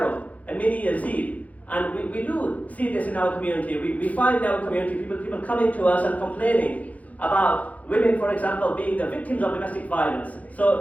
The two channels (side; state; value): right; late; 0.071 ms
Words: a mini Yazeed. And we do see this in our community. We find in our community people coming to us and complaining about women, for example, being the victims of domestic violence.